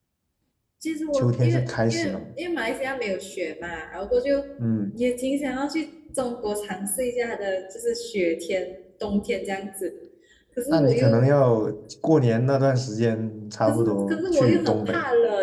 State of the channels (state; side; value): identical; both; correlation 1.00